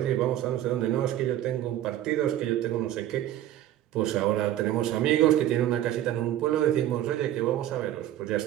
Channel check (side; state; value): left; quieter; 12.6 dB